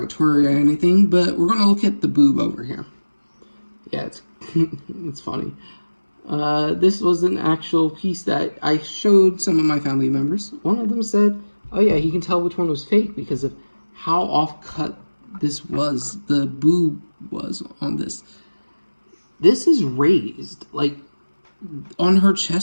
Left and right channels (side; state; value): both; inverted; correlation -1.00